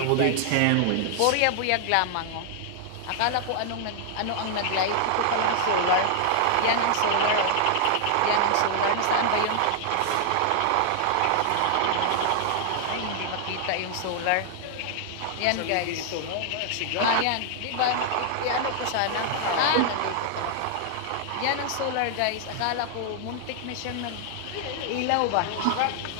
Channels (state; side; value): different; both; correlation 0.00